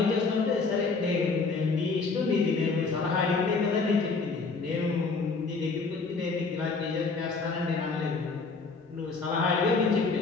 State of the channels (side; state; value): right; quieter; 4.3 dB